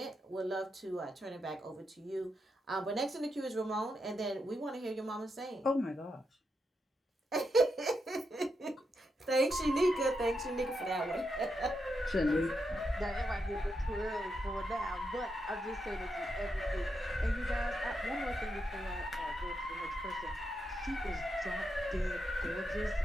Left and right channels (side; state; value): both; normal; correlation 0.84